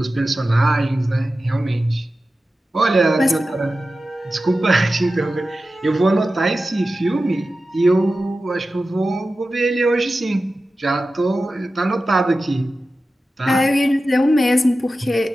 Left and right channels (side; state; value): both; normal; correlation 0.94